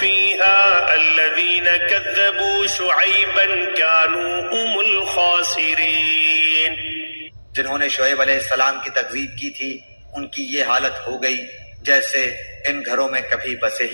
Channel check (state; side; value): inverted; both; correlation -1.00